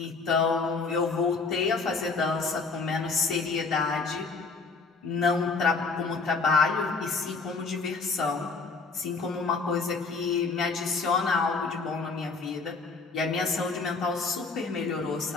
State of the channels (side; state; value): right; quieter; 4.3 dB